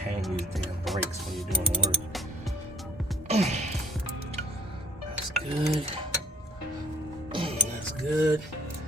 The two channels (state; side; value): normal; both; correlation 0.53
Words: these damn brakes when you're doing the work. That's good. That's good.